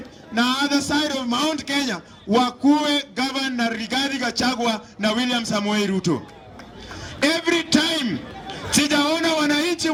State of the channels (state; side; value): identical; both; correlation 1.00